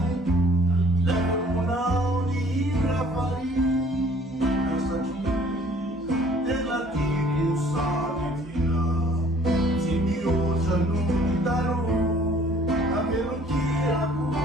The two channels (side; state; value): both; normal; correlation 0.56